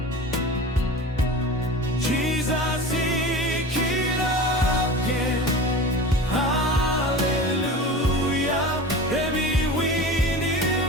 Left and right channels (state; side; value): normal; both; correlation 0.34